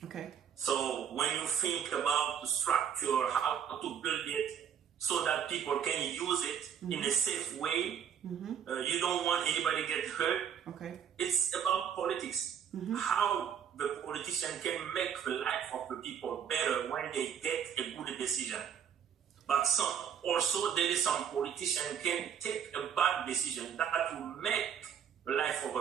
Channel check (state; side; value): quieter; left; 8.3 dB